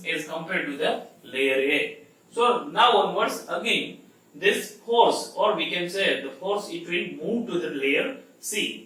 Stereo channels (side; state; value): both; identical; correlation 1.00